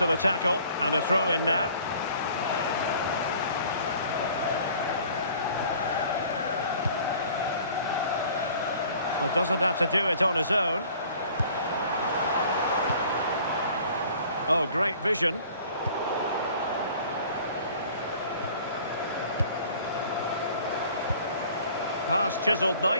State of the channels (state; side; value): inverted; both; correlation -0.51